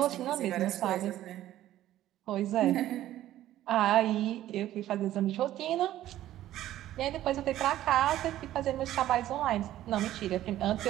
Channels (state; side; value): quieter; left; 13.5 dB